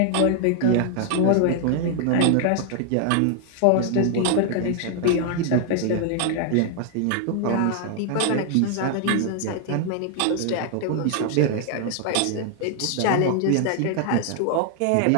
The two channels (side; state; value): both; different; correlation 0.00